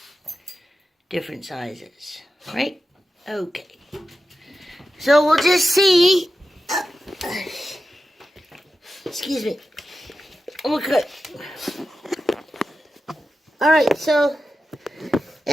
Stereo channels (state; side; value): normal; both; correlation 0.91